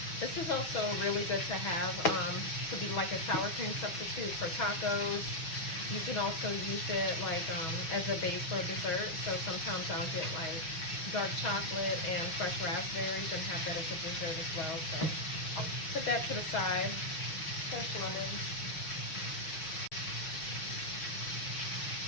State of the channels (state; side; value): late; right; 6.3 ms